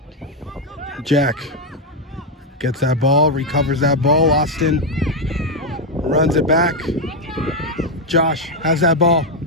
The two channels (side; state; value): both; normal; correlation 0.03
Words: Jack gets that ball, recovers that ball. Austin runs it back. Josh has that ball,